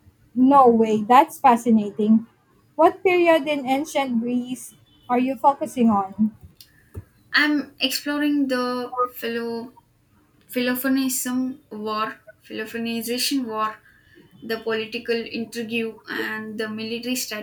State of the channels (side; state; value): both; identical; correlation 1.00